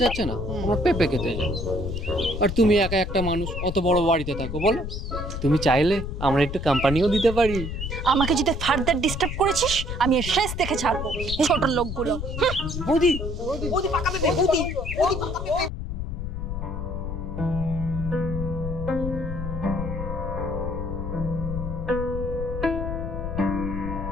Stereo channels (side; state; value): left; noise; rumble, 5 dB below the sound